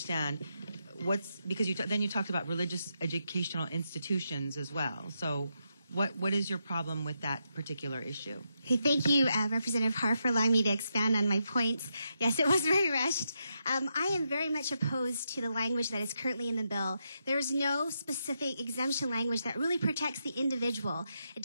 because then you talked about religious educational institutions as well. So what is your problem with that particular issue? Okay, thank you, Representative Har, for allowing me to expand on my points. Yes, it was very rushed. I am very much opposed to the language that is currently in the bill. There is no specific exemption language that really protects the individual. It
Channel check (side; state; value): both; inverted; correlation -0.82